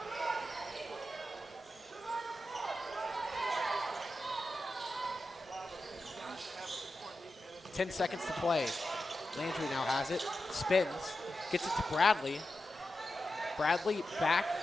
Ten seconds to play. Landry now has it, spins, gets it to Bradley. Bradley back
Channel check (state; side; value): normal; both; correlation 0.91